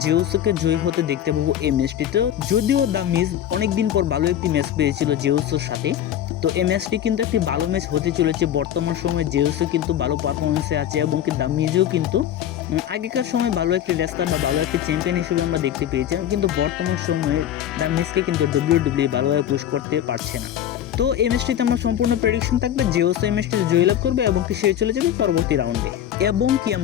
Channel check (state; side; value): quieter; right; 10.8 dB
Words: জেউসোকে জয়ী হতে দেখতে পাবো এই ম্যাচটিতে। যদিও দ্য মিজ অনেকদিন পর ভালো একটি ম্যাচ পেয়েছিল জেউসোর সাথে, তো এই ম্যাচটি কিন্তু একটি ভালো ম্যাচ হতে চলেছে। বর্তমান সময়ে জেউসও কিন্তু ভালো পারফরমেন্সে আছে এবং কি দ্য মিজও কিন্তু আগেকার সময় ভালো একটি রেসলার বা ভালো একটি চ্যাম্পিয়ন হিসেবে আমরা দেখতে পেয়েছিলাম, কিন্তু বর্তমান সময়ে দ্য মিজকে কিন্তু WWE ভালোভাবে পুশ করতে পারছে না। তো এই ম্যাচটিতে আমার সম্পূর্ণ প্রেডিকশন থাকবে জেউসো এই ম্যাচটিতে জয়লাভ করবে এবং কি সে চলে যাবে পরবর্তী রাউন্ডে। এবং কি